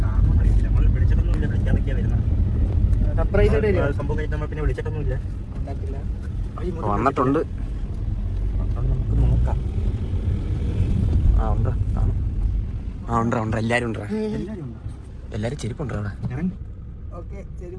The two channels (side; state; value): both; identical; correlation 1.00